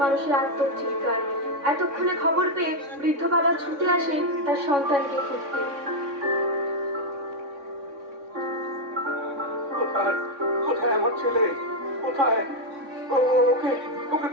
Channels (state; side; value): late; left; 3.6 ms